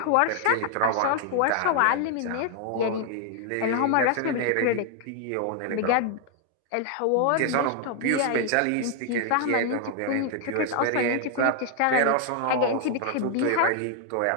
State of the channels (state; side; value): different; both; correlation 0.00